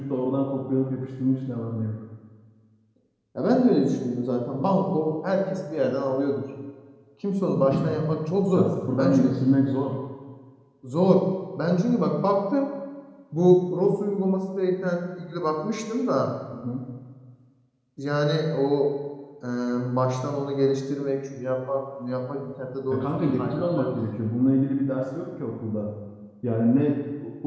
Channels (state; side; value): identical; both; correlation 1.00